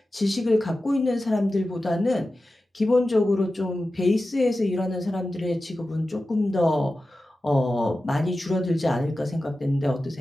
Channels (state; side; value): normal; both; correlation 0.94